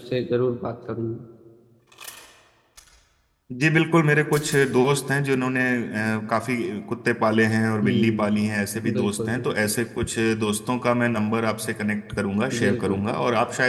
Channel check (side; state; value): both; identical; correlation 1.00